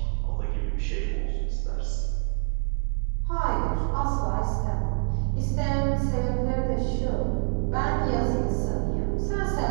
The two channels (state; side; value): silent; left; digital silence